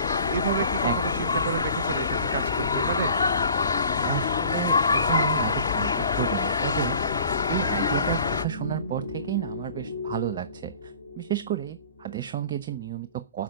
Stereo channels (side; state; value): both; inverted; correlation -0.47